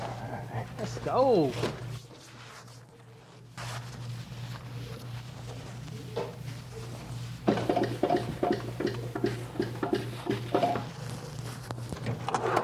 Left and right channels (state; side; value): identical; both; correlation 1.00